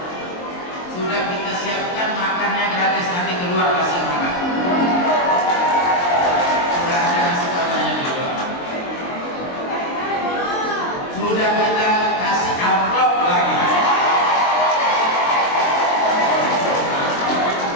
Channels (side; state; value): right; late; 23 ms